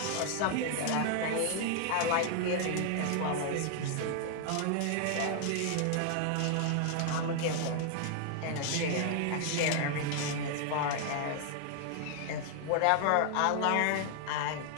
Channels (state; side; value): different; both; correlation 0.00